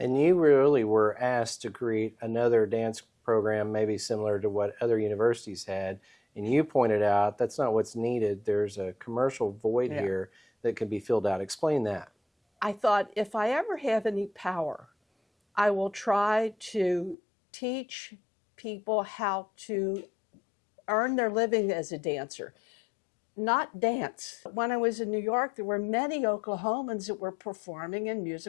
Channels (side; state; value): right; drops out; at 17.2 s